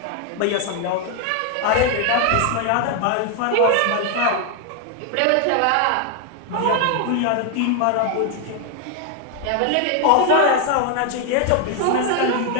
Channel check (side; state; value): both; different; correlation 0.01